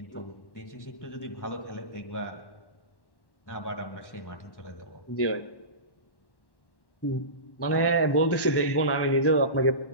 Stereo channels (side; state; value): right; late; 1.1 ms